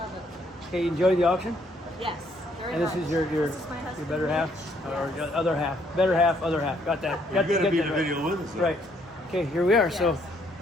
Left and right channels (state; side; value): normal; both; correlation 0.68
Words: it. okay, you enjoy the auction? Yes, very And this much. is your This is my your husband, better half Mitch. or Yes. your other half, better half, other half. Got that? You're going to be in that the right. video with us. Then. Right. Okay, here we are. So, Yes.